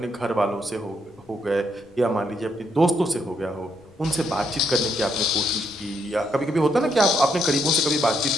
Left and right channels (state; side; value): noise; left; rumble, 29 dB below the sound